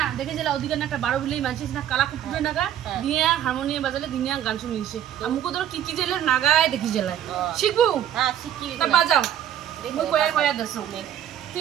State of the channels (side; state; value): left; quieter; 10.6 dB